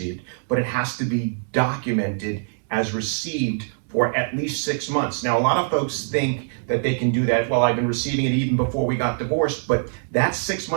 but it has to be documented as received for at least 6 months. Now, a lot of folks think that they can do that. Well, I've been receiving it even before we got divorced, but that 6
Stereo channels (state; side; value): silent; left; 63 dB below the other